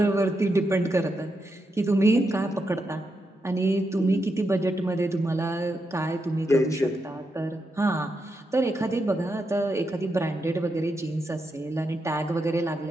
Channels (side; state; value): both; normal; correlation 0.84